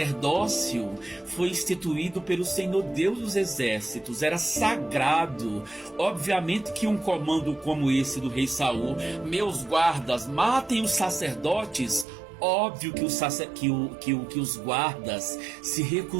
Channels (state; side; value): drops out; left; at 12.1 s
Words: foi instituído pelo Senhor Deus dos Exércitos, era sagrado. Obviamente que um comando como esse do rei Saul: meus guardas, matem os sacerdotes. Óbvio que os guardas se